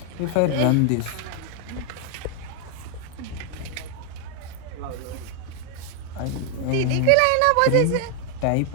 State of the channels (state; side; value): different; both; correlation 0.00